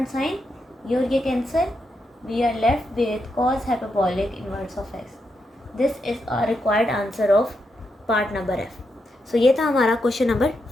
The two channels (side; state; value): both; normal; correlation 0.83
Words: साइन, ये और ये cancel, we are left with cos hyperbolic inverse of x. This is a required answer of part number F. So ये था हमारा क्वेश्चन नंबर